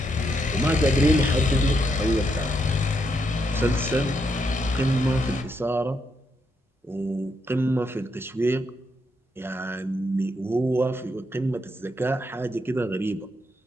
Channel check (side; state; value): both; normal; correlation 0.79